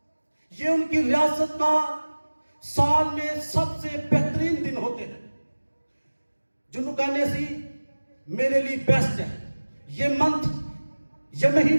یہ ان کی ریاست کا سال میں سب سے بہترین دن ہوتے ہیں، جنہوں کہنے سی میرے لیے بیسٹ ہے. یہ منتھ، یہ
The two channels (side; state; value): both; inverted; correlation -1.00